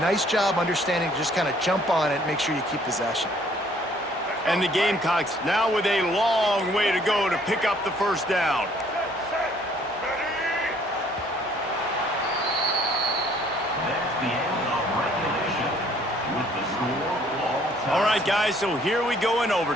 job understanding to just kind of jump on it and make sure you keep possession. And the Gamecocks now with a long way to go to pick up the 1st down. That's the end of regulation with the score all time. All right, guys, so here we go in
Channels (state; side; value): normal; both; correlation 0.61